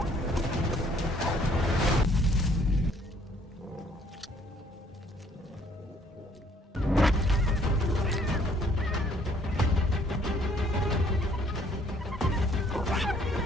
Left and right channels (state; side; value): normal; both; correlation 0.63